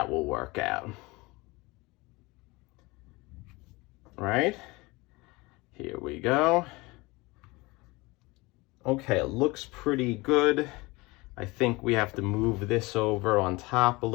will work out. Right? Here we go. Okay, it looks pretty good. I think we have to move this over on top a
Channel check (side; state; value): right; quieter; 23.3 dB